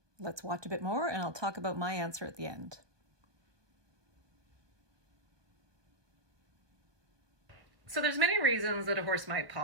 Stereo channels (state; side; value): late; left; 1.2 ms